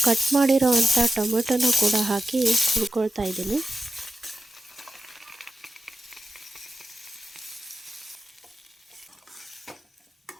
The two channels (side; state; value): both; normal; correlation 0.91